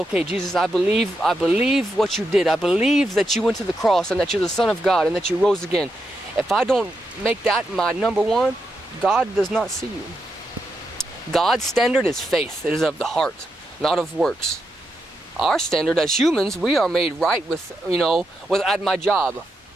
Jesus, I believe what you did. I believe that you went to the cross and that you're the Son of God and that you rose again. If I don't make that my number one, God does not see you. God's standard is faith. It is of the heart, not of works. Our standard as humans, we are made right with at my job.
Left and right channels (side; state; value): both; normal; correlation 0.84